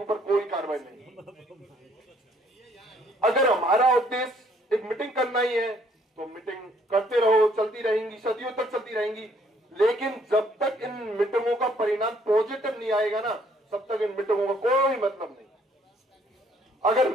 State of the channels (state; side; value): normal; both; correlation 0.64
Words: ऊपर कोई कार्रवाई नहीं। अगर हमारा उद्देश्य एक मीटिंग करना ही है तो मीटिंग करते रहो, चलती रहेंगी, सदियों तक चलती रहेंगी। लेकिन जब तक इन मीटिंगों का परिणाम पॉजिटिव नहीं आएगा ना, तब तक इन मीटिंगों का कोई मतलब नहीं। अगर